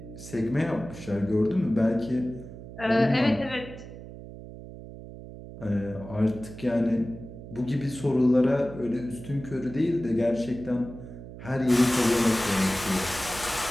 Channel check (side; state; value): right; noise; hum, 14 dB below the sound